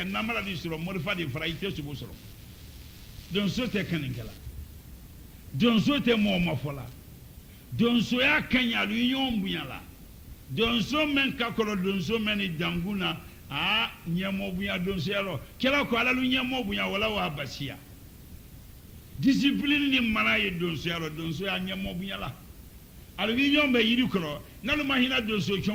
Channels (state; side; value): identical; both; correlation 1.00